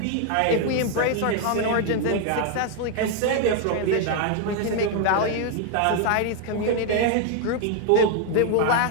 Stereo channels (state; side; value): different; both; correlation 0.01